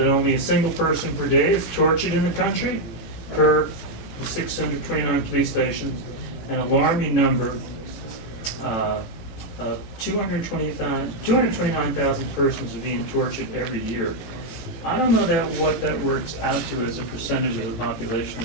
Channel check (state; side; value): late; right; 18 ms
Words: only a single person per day is tortured in the country, per the 629 police stations, an alarming number of 229,000 persons are being tortured every year. I don't know what that works out to as a percentage of the population